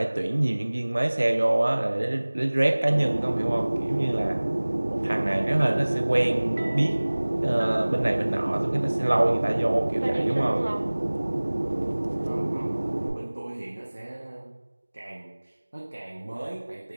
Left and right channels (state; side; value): inverted; both; correlation -1.00